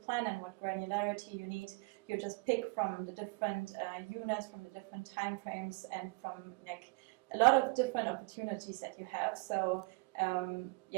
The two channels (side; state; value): left; quieter; 28.0 dB